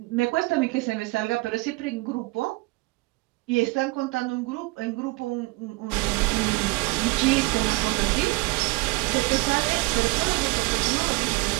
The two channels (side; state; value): left; quieter; 23.3 dB